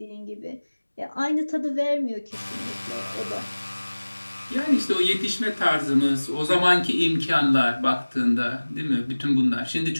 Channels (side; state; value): both; inverted; correlation -1.00